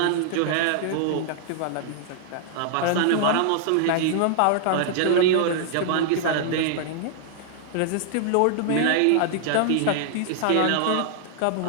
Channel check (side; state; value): both; different; correlation -0.01